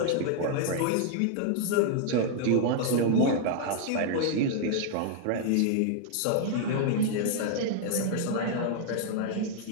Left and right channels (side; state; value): both; different; correlation 0.00